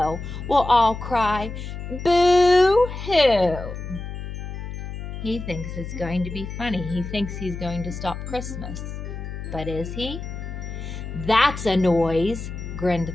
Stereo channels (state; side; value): noise; left; hum, 8 dB below the sound